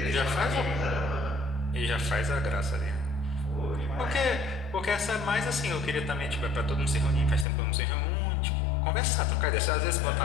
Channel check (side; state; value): right; drops out; at 7.5 s